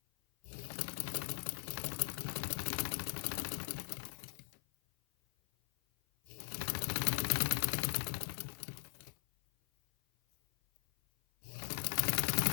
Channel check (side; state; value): right; silent; 51 dB below the other